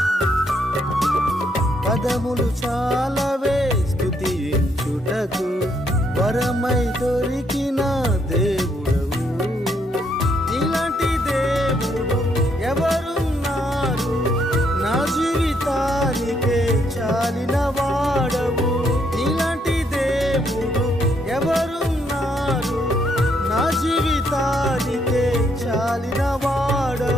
పదములు చాలవే స్తుతించుటకు, వరమై దొరికిన దేవుడవు. ఇలాంటి దేవుడు ఎవరున్నారు, నా జీవితానికే చాలిన వాడవు. ఇలాంటి దేవుడు ఎవరున్నారు, నా జీవితానికే చాలిన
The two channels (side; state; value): both; normal; correlation 0.73